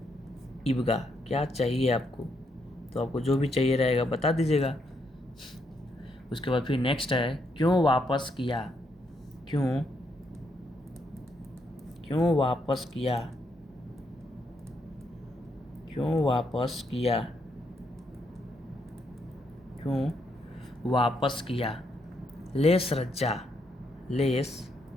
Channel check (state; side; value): normal; both; correlation 0.77